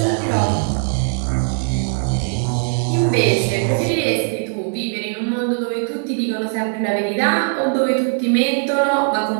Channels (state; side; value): silent; left; 58 dB below the other